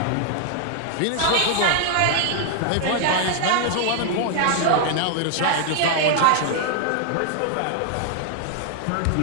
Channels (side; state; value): both; different; correlation 0.00